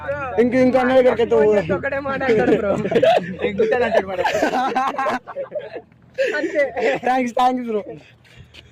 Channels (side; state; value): both; identical; correlation 1.00